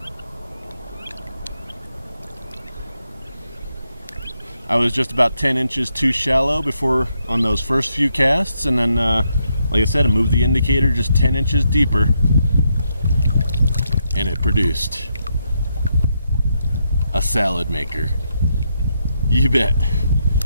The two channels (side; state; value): both; inverted; correlation -0.80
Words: I was just about 10 inches too shallow before on those first few casts, and then like I said, I moved the indicator just 10 inches deeper and it produced a salad maker. You bet.